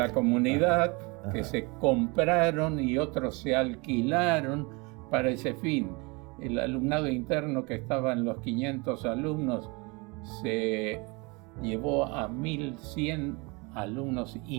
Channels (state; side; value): quieter; left; 27.9 dB